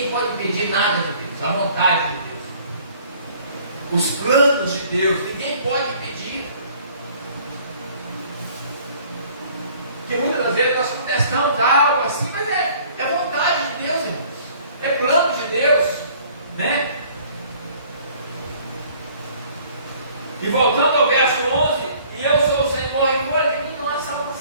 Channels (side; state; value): both; inverted; correlation -0.55